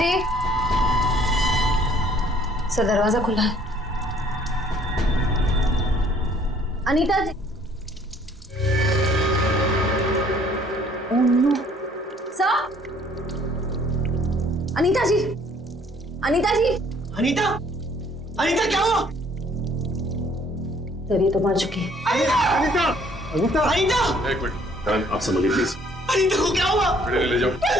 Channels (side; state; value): both; normal; correlation 0.60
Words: सर दरवाजा खुला है। अनीता जी, सर, अनीता जी, अनीता जी, अनीता, अनीता क्या हुआ? सर ये तो मर चुकी है। अनीता, अनीता, अनीता, एक मिनट, करण आप समझिए प्लीज। अनीता को क्या हुआ? ले जाओ।